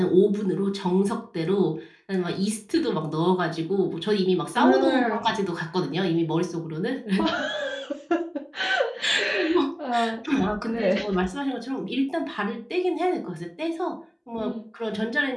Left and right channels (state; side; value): identical; both; correlation 1.00